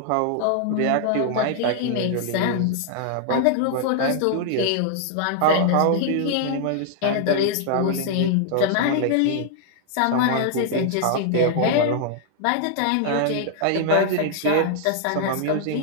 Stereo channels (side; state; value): both; different; correlation -0.01